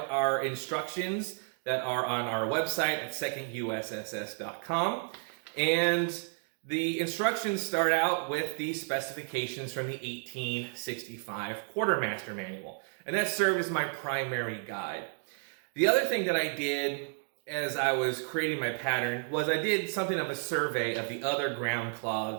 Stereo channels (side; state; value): left; silent; 57 dB below the other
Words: our instructions that are on our website at secondusss.com. And the instructions start out with the specifications from the 1865 Quartermaster Manual. And that served as my primary guide. The other thing that I did as I was creating my pattern was I did something of a survey of the other ground